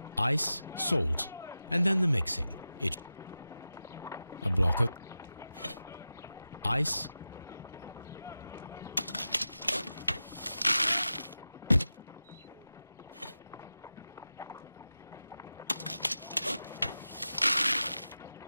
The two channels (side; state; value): both; inverted; correlation -0.94